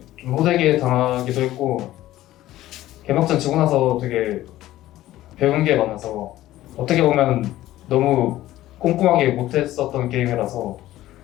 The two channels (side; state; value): right; quieter; 15.0 dB